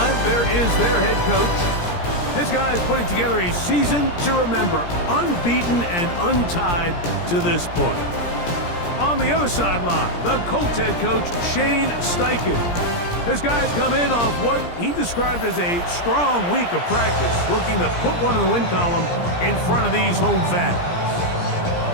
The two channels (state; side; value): late; right; 17 ms